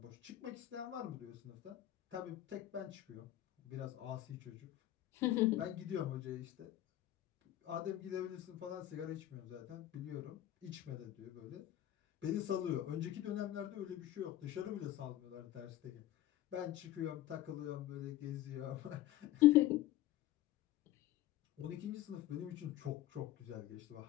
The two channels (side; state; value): right; quieter; 13.8 dB